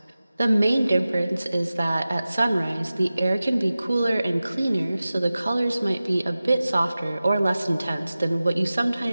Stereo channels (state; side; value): inverted; both; correlation -0.96